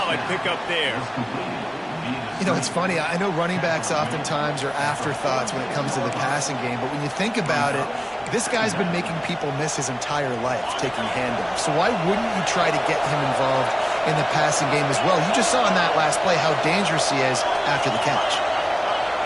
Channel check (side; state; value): both; identical; correlation 1.00